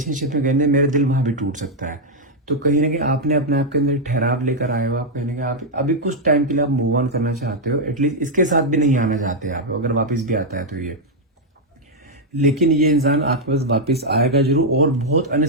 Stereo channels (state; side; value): normal; both; correlation -0.02